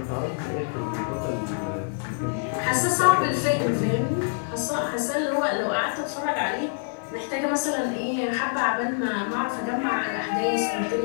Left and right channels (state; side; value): silent; right; digital silence